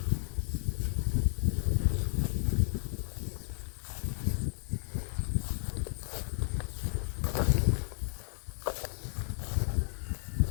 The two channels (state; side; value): silent; right; digital silence